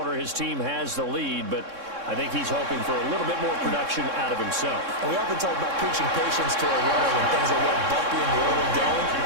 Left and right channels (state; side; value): late; left; 3.6 ms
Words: His team has the lead, but I think he's hoping for a little bit more production out of himself. And we often talk about preaching patience to a runner when things are a little bumpy in the early going.